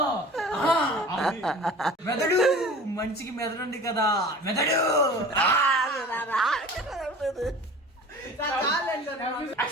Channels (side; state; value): both; normal; correlation 0.41